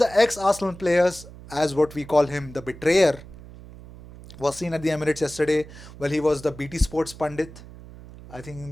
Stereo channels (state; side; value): noise; right; hum, 17 dB below the sound